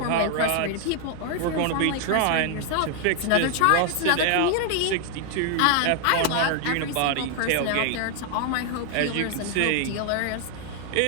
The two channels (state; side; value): different; both; correlation 0.00